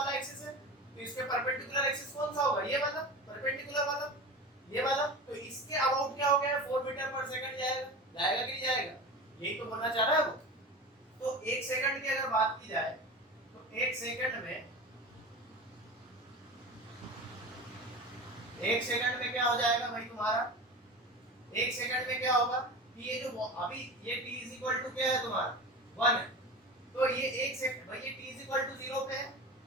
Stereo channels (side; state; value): both; normal; correlation 0.30